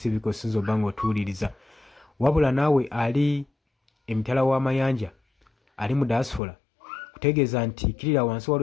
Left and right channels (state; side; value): drops out; right; at 6.4 s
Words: ko sinzo bango tuliriza. Wabula nawe ali emitala wa mayanja ali mu diaspora kutegeeza nti kirira wansi